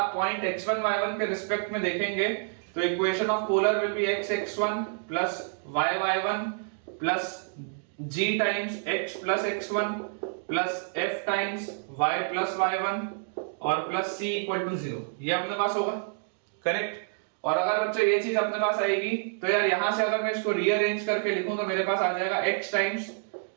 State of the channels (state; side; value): silent; left; digital silence